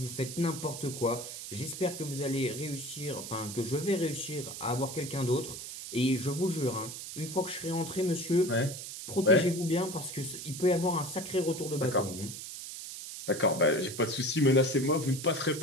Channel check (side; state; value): right; noise; hiss, 9 dB below the sound